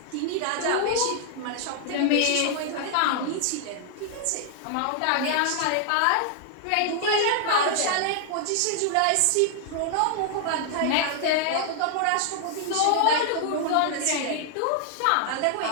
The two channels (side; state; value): both; different; correlation 0.00